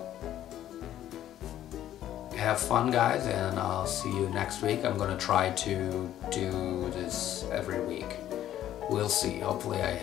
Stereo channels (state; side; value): quieter; right; 12.1 dB